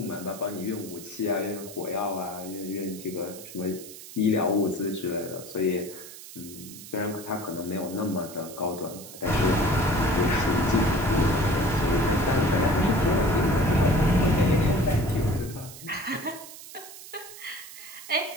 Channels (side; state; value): right; noise; hiss, 15 dB below the sound